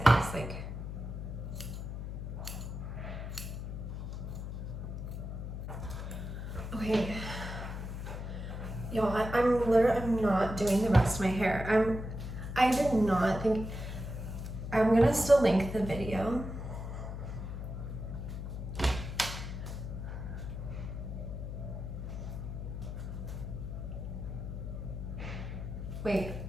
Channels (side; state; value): left; noise; hum, 6 dB below the sound